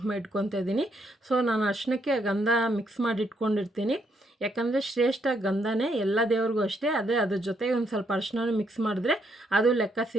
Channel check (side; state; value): both; normal; correlation 0.74